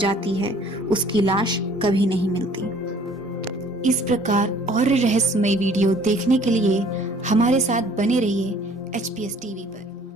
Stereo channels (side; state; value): both; normal; correlation 0.55